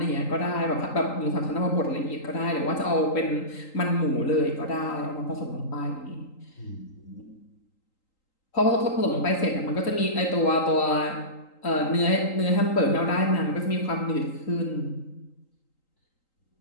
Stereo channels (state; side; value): late; right; 3.8 ms